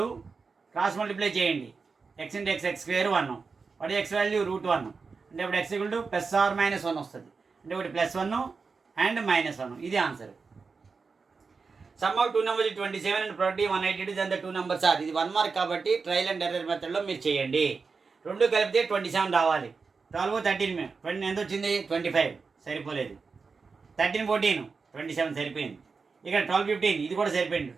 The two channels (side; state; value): left; quieter; 4.8 dB